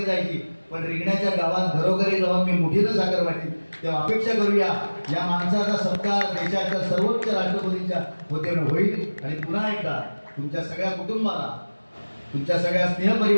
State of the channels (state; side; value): inverted; both; correlation -1.00